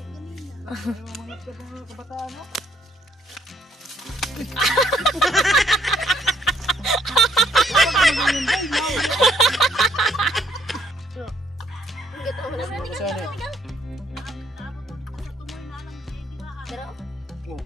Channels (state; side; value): normal; both; correlation 0.67